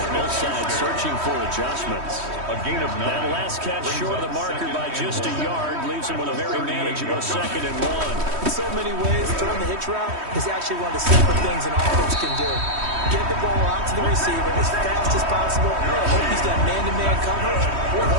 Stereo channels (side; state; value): left; late; 3.1 ms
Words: Both sides searching for adjustments. A gain of 9. That last catch short of the marker by just a yard leaves him with a very manageable 2nd and 1. In so many ways, throwing the hitch route is actually one of the simple things an offense can do. Get the ball out to the receiver as fast as possible. Hope he's got man-to-man coverage, or